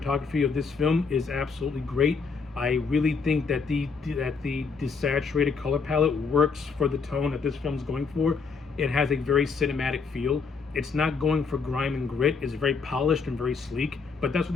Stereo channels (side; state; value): right; quieter; 5.1 dB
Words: of this film is absolutely great. I really think that the desaturated color palette works for the tone that this film's going for. It has a very cinematic feel. It's not going for grime and grit. It's very polished and very sleek, but that's what